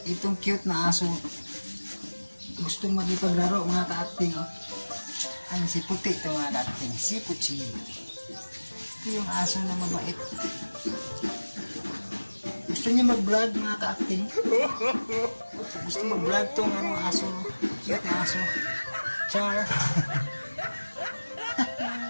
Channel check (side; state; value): both; inverted; correlation -1.00